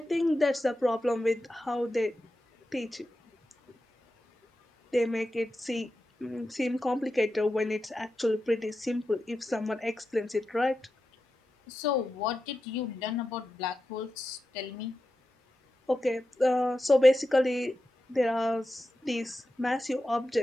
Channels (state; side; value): normal; both; correlation 0.90